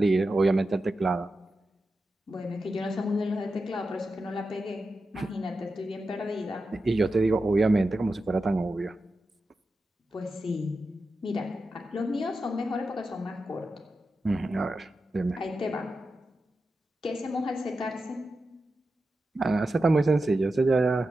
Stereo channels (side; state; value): both; normal; correlation 0.90